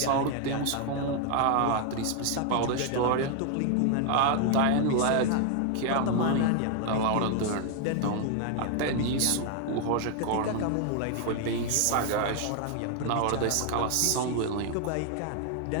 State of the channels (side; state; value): both; different; correlation 0.00